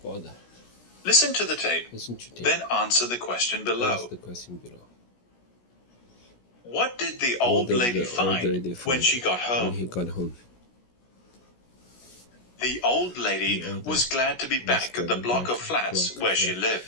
bother. Listen to the tape, Listen to tape. then answer the question below. Ask the question below. What did the What old did lady the old lady find when find she got When home? he got home. The old lady was glad to be back at the block of flats where she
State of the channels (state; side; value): late; right; 16 ms